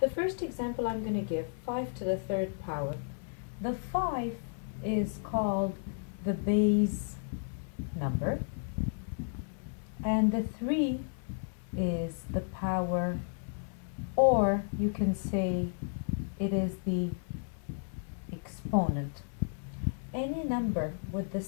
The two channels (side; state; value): right; silent; 56 dB below the other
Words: The first example I'm going to give, 5 to the third power. The 5 is called the base number, and the 3 is the power, or you can say it is the exponent. Any number with the